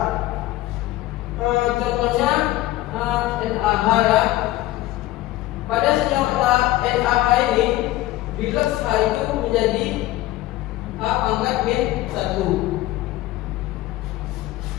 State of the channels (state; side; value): quieter; right; 16.4 dB